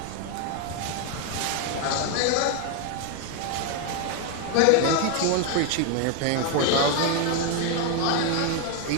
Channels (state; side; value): different; both; correlation 0.01